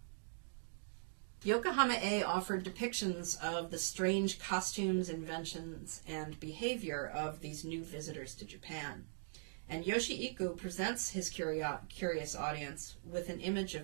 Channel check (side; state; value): left; silent; digital silence